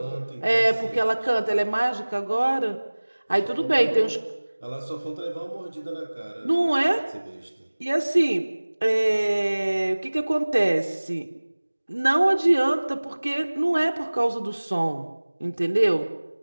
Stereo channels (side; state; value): both; inverted; correlation -1.00